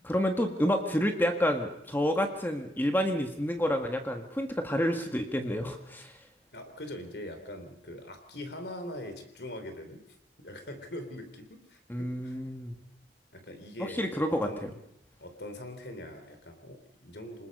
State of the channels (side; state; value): both; normal; correlation 0.77